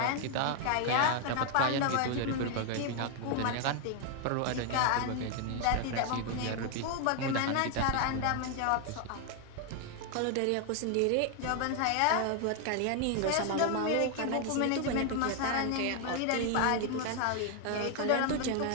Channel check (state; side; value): different; both; correlation 0.00